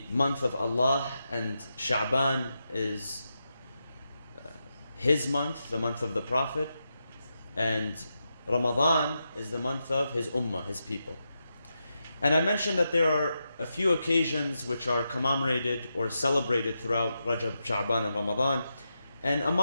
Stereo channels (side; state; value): both; inverted; correlation -0.87